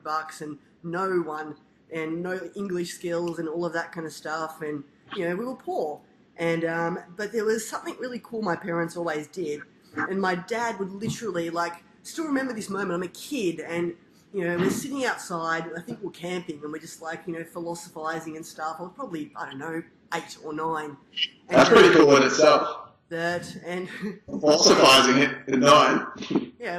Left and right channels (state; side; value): identical; both; correlation 1.00